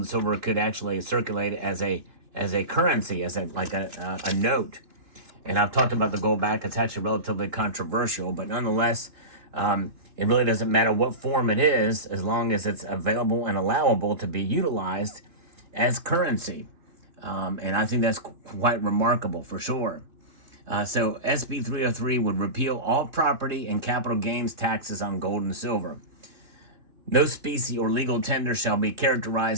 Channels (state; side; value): late; left; 3.1 ms